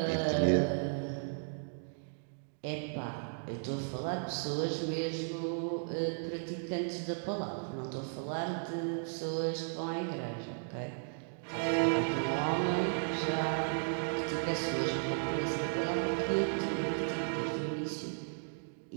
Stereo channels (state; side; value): silent; left; digital silence